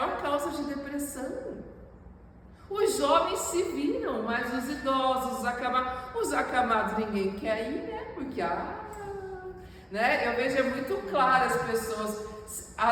causa de depressão. Os jovens se viram, mas os idosos, os acamados ninguém quer ir, né? Porque, né? Eu vejo muito claro as pessoas.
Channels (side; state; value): both; identical; correlation 1.00